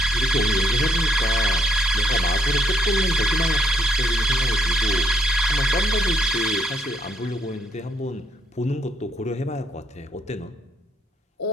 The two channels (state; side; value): normal; both; correlation 0.70